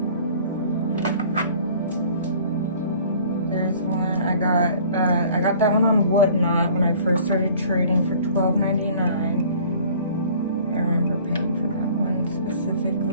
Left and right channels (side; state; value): both; inverted; correlation -0.51